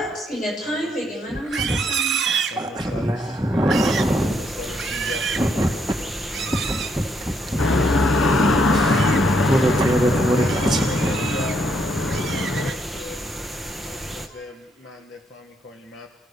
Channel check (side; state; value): both; normal; correlation 0.74